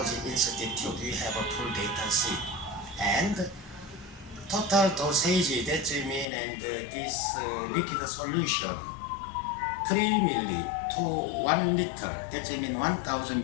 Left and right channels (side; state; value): right; drops out; at 6.2 s